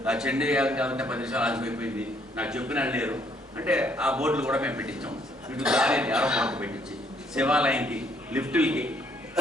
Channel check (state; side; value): normal; both; correlation 0.67